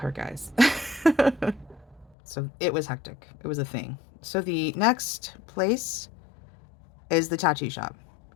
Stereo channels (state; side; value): drops out; right; at 2.1 s